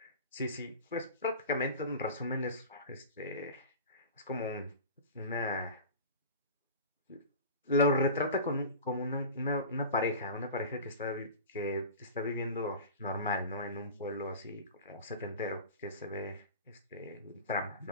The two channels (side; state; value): both; inverted; correlation -0.34